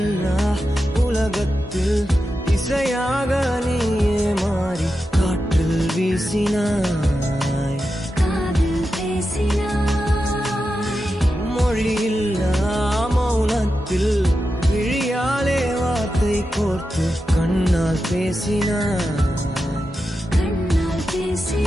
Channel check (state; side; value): normal; both; correlation 0.90